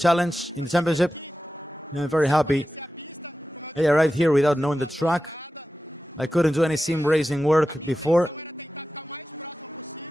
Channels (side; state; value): both; normal; correlation 0.93